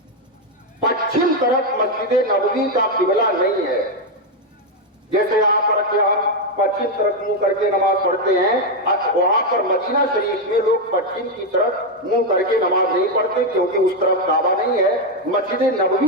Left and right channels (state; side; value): normal; both; correlation 0.04